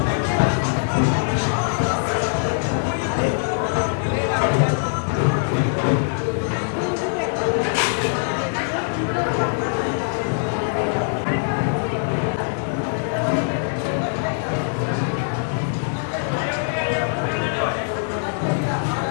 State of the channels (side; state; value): right; silent; digital silence